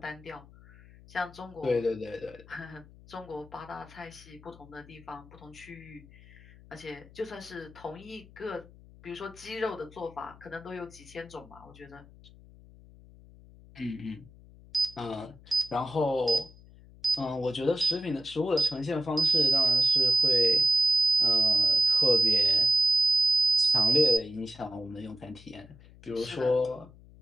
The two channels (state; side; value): noise; left; hum, 22 dB below the sound